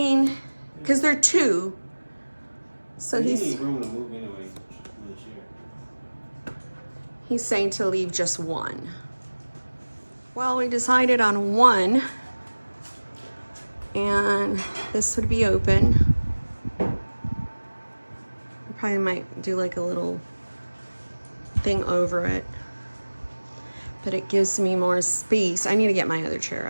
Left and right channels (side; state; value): both; inverted; correlation -1.00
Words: cause they're two. So you he's need room to move anyway. he's saying to leave just one. Well, we decided on one. And this would be open. I probably might do like a little thing over it. But it gives me more space. I need to get my other chair.